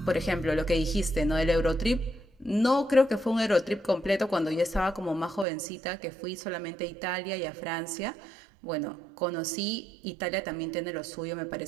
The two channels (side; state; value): left; drops out; at 5.5 s